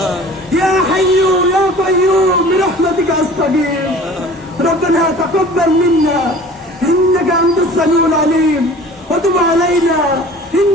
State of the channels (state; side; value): normal; both; correlation 0.44